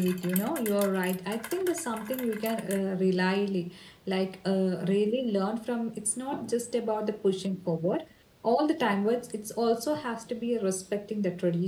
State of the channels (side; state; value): both; identical; correlation 1.00